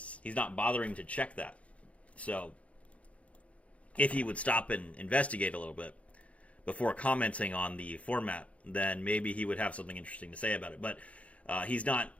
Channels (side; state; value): right; late; 0.064 ms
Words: He's not bothering to check that. So, if he would stop and investigate a little bit before commenting on the format, then maybe he would have something interesting to say about it. But he's not.